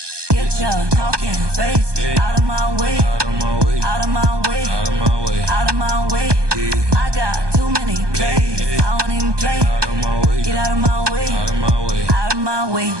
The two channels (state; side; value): late; left; 1.2 ms